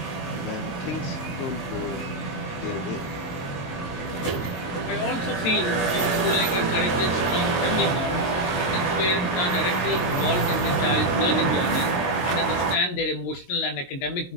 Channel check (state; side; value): late; right; 22 ms